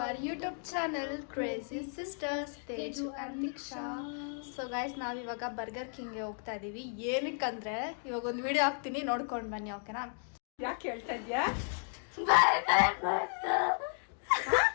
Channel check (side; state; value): right; silent; 55 dB below the other